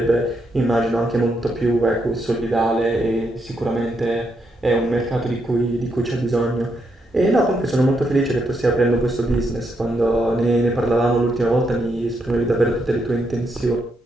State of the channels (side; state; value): both; normal; correlation 0.79